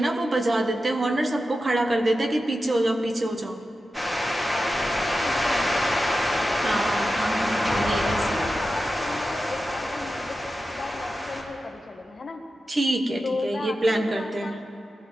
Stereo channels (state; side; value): normal; both; correlation 0.92